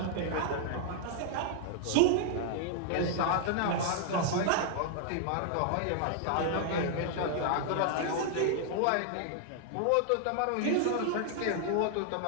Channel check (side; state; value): both; different; correlation 0.00